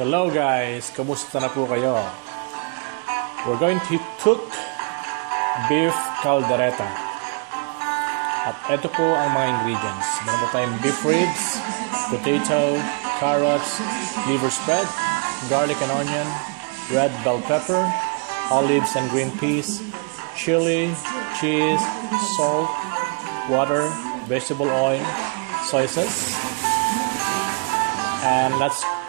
guys, kamusta na po kayo? We're going to cook beef caldereta. At ito po ang mga ingredients. Meron po tayong beef ribs, potato, carrots, liver spread, garlic and onion, red bell pepper, olives and green peas, chili, cheese, salt, water, vegetable oil, soy sauce. And let's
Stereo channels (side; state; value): left; quieter; 33.9 dB